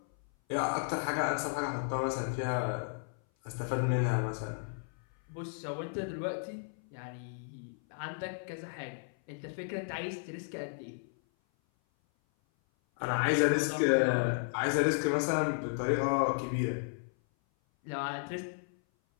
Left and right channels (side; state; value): right; silent; 55 dB below the other